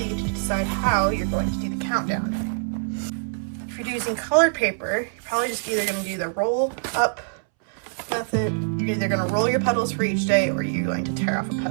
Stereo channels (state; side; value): silent; left; 62 dB below the other